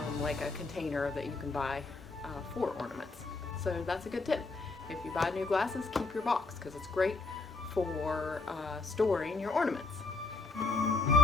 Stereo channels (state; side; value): quieter; right; 3.7 dB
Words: like a container that you can buy for ornaments. So that's a good tip. If you buy new glasses, keep your box because it's great for storing your ornaments.